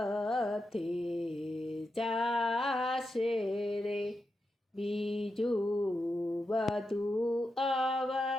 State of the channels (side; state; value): both; normal; correlation 0.87